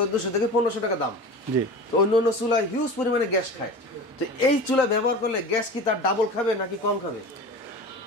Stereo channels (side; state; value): both; normal; correlation 0.34